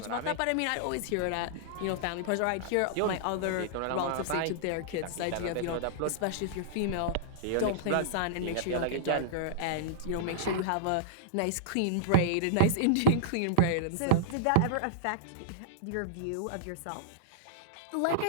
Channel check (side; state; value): both; different; correlation -0.02